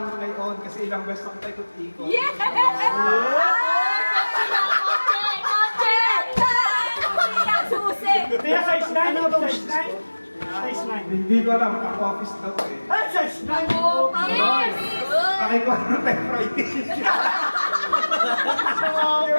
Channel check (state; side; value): inverted; both; correlation -1.00